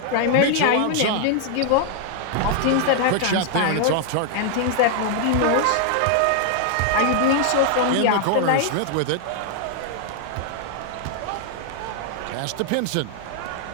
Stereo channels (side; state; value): both; different; correlation 0.00